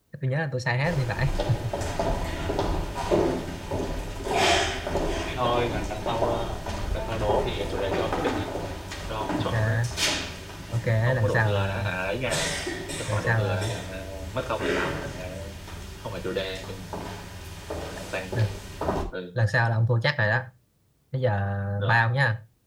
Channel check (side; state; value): both; identical; correlation 1.00